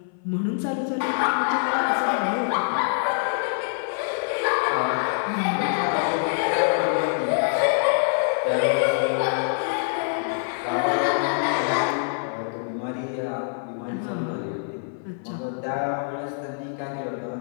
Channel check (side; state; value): right; silent; 58 dB below the other